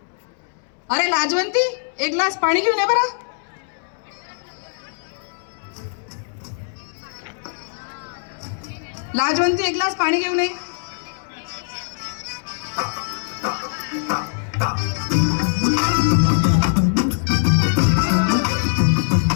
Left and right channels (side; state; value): right; silent; 64 dB below the other